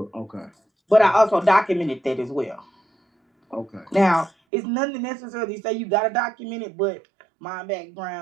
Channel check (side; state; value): left; drops out; at 4.3 s